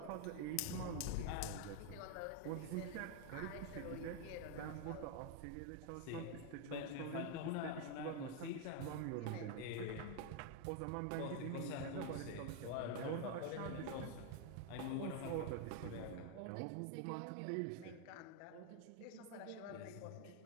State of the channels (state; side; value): different; both; correlation 0.00